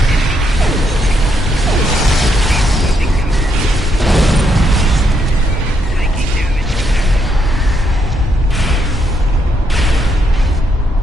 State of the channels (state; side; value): normal; both; correlation 0.77